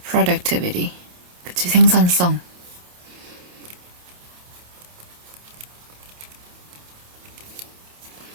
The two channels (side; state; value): left; late; 28 ms